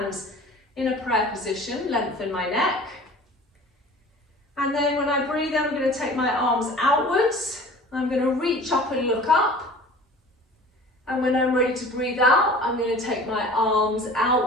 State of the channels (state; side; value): normal; both; correlation 0.43